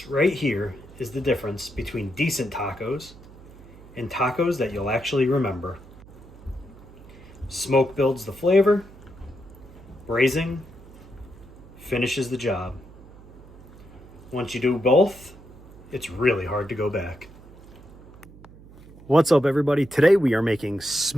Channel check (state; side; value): noise; right; hum, 20 dB below the sound